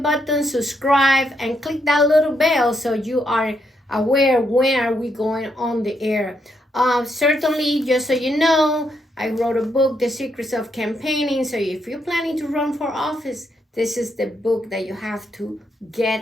subscribe, and click that little bell so you are aware when are we going on the air. Certainly, just so you know, I wrote a book, The Secrets of Campaigning. So if you're planning to run for office, this is the book that you have to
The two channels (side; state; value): both; normal; correlation 0.78